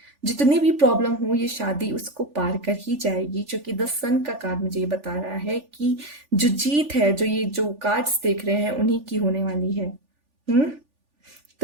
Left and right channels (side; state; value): left; late; 3.4 ms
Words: जितनी भी प्रॉब्लम हो, ये शादी उसको पार कर ही जाएगी, क्योंकि द सन का कार्ड मुझे ये बता रहा है कि जो जीत है, जो ये जो कार्ड्स देख रहे हैं, उन्हीं की होने वाली है। हम्म,